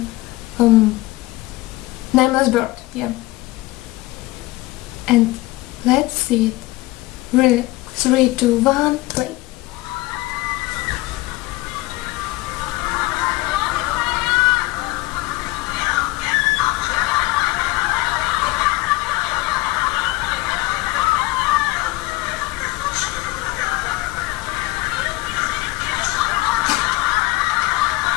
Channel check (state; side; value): quieter; right; 19.7 dB